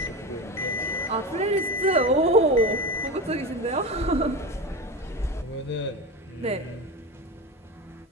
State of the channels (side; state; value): both; normal; correlation 0.23